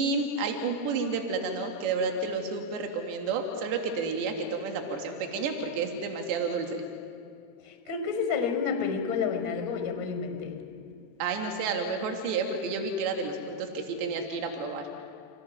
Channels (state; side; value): late; left; 14 ms